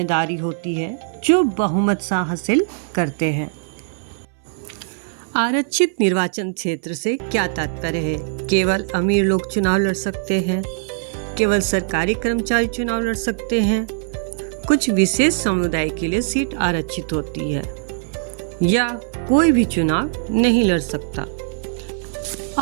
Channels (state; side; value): silent; left; 61 dB below the other